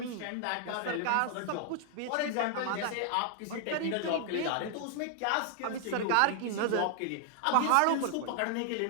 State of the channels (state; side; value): different; both; correlation 0.00